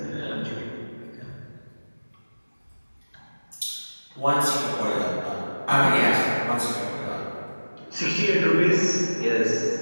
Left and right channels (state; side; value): inverted; both; correlation -1.00